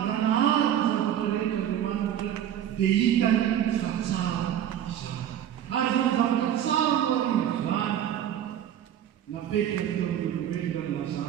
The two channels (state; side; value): quieter; left; 10.5 dB